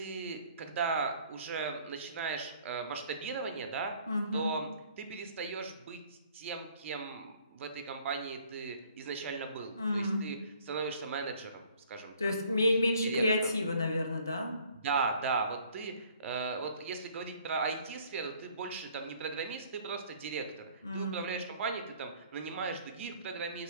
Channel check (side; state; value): both; inverted; correlation -0.58